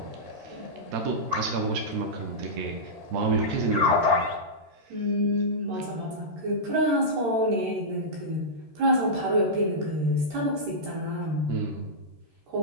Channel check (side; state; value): left; late; 13 ms